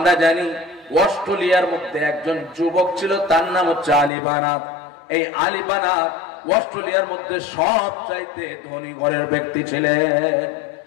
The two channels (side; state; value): right; drops out; at 4.1 s